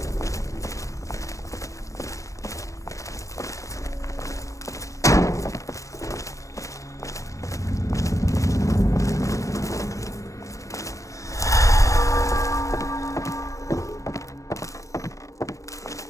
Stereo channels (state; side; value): late; right; 0.15 ms